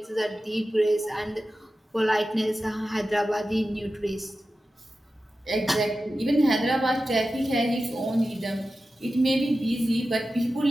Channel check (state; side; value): normal; both; correlation 0.93